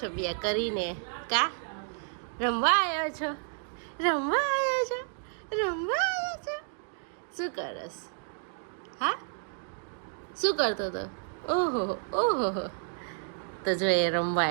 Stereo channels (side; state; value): left; silent; digital silence